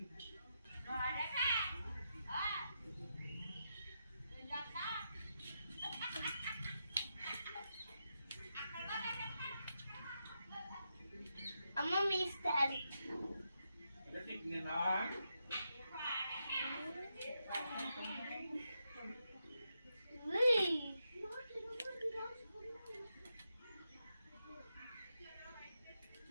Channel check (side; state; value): both; inverted; correlation -0.84